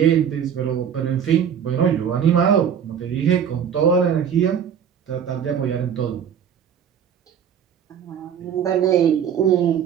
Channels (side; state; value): left; quieter; 8.2 dB